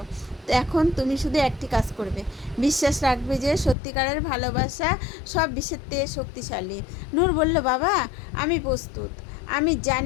এখন তুমি শুধু একটি কাজ করবে, বিশ্বাস রাখবে যে সত্যিকারের ভালোবাসা সব বিষের থেকে শক্তিশালী। নূর বলল, বাবা, আমি প্রস্তুত। আমি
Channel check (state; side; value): drops out; right; at 3.8 s